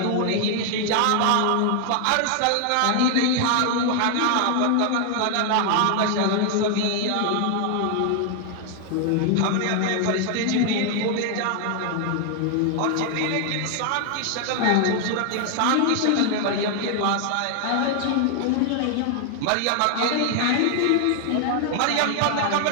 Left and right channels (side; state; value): both; different; correlation 0.00